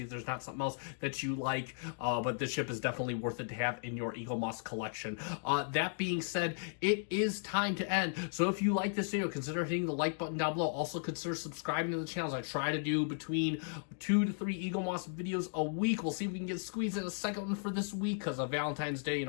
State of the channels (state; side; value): silent; right; digital silence